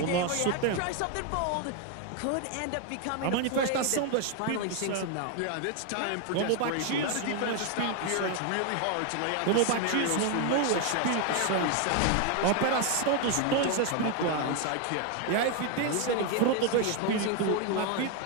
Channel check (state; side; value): different; both; correlation 0.01